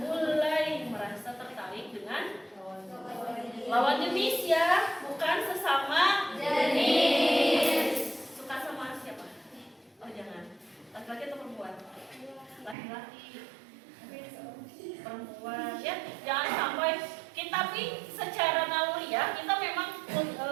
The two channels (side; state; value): left; drops out; at 12.8 s